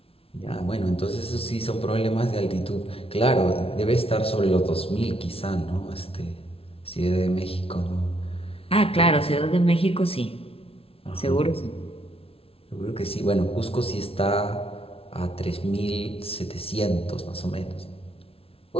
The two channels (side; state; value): right; late; 0.27 ms